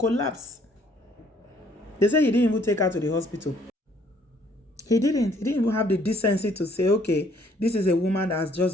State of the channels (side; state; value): both; normal; correlation 0.63